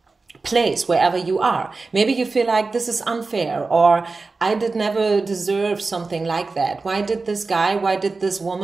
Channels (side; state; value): left; quieter; 3.9 dB